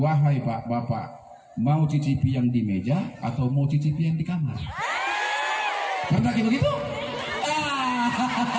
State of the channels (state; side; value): identical; both; correlation 1.00